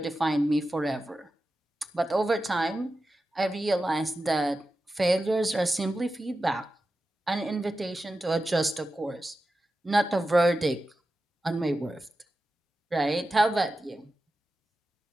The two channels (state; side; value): normal; both; correlation 0.92